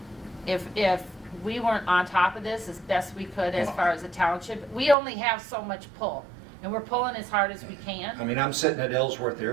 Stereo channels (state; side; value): drops out; left; at 5.0 s